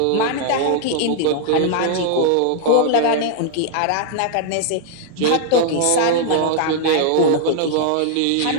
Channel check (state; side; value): different; both; correlation 0.00